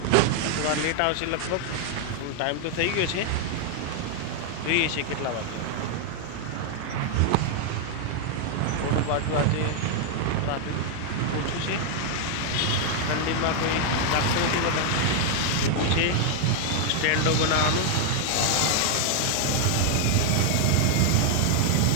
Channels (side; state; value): both; different; correlation 0.00